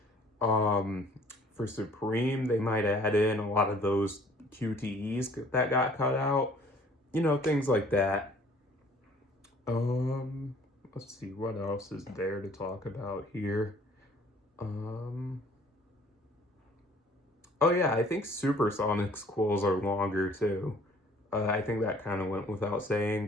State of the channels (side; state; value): both; normal; correlation 0.56